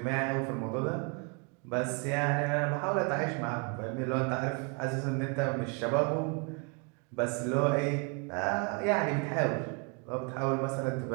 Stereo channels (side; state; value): left; quieter; 33.6 dB